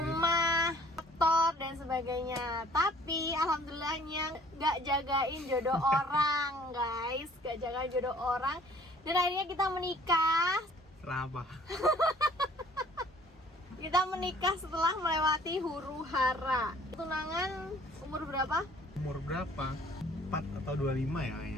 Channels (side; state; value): both; normal; correlation 0.55